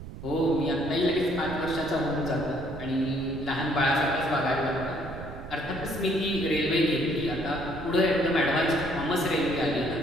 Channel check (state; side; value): noise; right; rumble, 11 dB below the sound